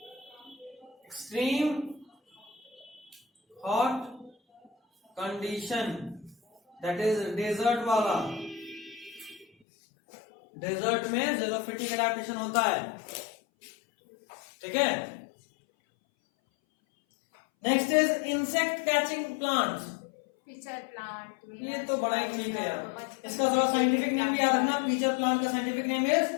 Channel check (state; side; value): drops out; right; at 9.5 s